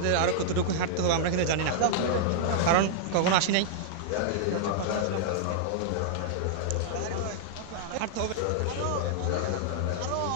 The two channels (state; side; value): different; both; correlation -0.01